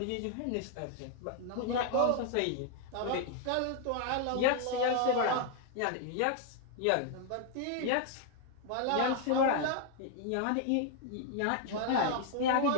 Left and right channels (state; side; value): different; both; correlation 0.00